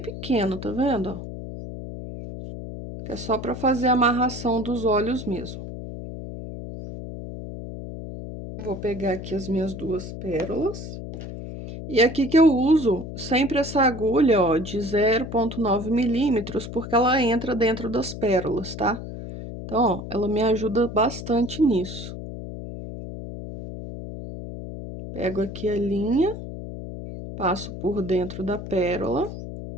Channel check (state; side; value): noise; left; hum, 9 dB below the sound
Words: tá vendo, ó? Que é só para fazer a amarração dos olhos mesmo. Vou pegar aqui as minhas 2 pérolas. E aqui que eu uso sempre essa agulha, ó, de 0,9 milímetros, porque ela entra dentro das pérolas, tá? Então, ó, ela me ajuda bastante nisso. Pego aqui a linha, passo por dentro da pérola.